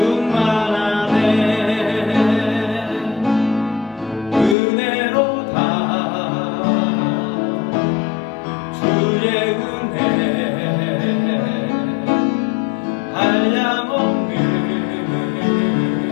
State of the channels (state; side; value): drops out; right; at 4.5 s